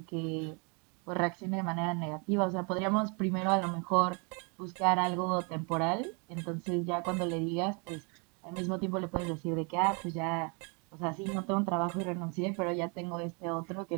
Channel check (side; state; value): left; quieter; 34.2 dB